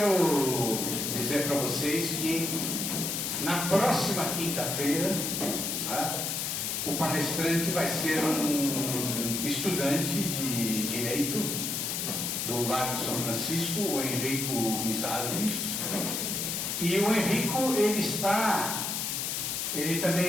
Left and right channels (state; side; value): noise; left; hiss, 1 dB below the sound